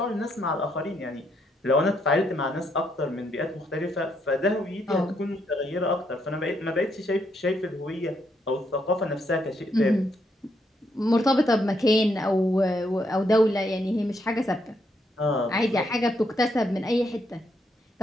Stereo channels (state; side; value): normal; both; correlation 0.76